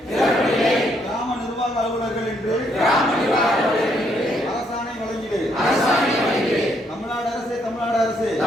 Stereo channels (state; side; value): normal; both; correlation 0.72